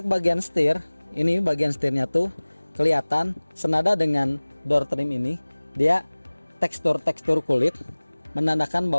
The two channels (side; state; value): both; inverted; correlation -1.00